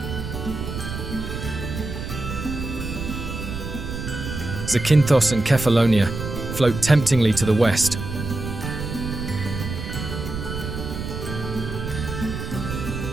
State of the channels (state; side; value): noise; right; rumble, 6 dB below the sound